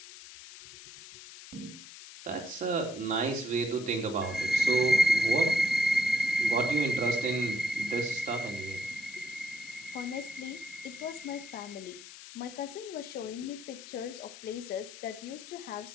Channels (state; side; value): noise; left; hiss, 15 dB below the sound